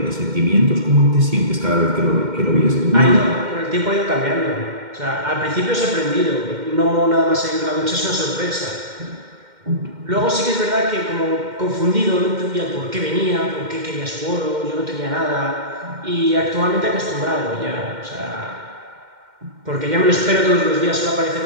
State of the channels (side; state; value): left; late; 2.1 ms